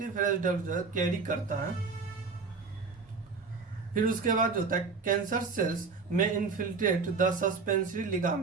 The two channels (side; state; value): left; quieter; 4.7 dB